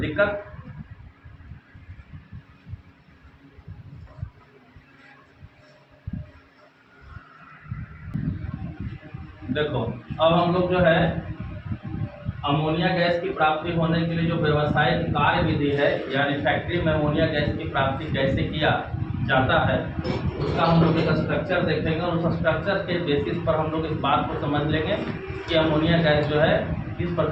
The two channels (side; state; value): both; identical; correlation 1.00